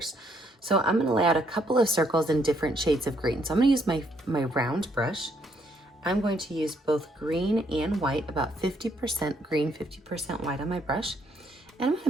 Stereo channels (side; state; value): both; normal; correlation 0.71